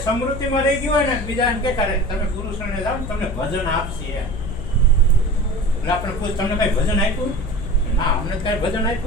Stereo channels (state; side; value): noise; left; hum, 8 dB below the sound